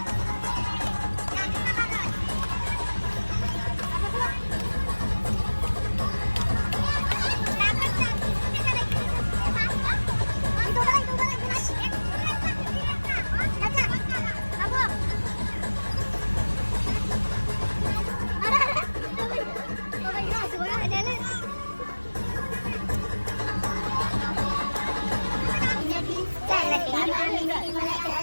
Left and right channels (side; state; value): both; inverted; correlation -1.00